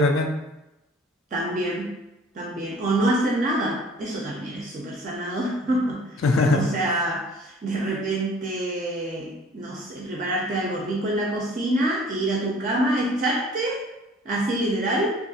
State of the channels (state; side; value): normal; both; correlation 0.51